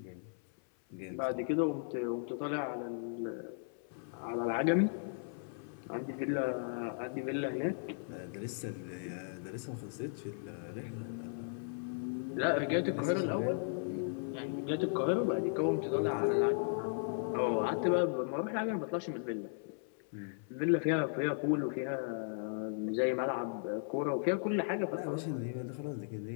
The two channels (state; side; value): silent; right; 54 dB below the other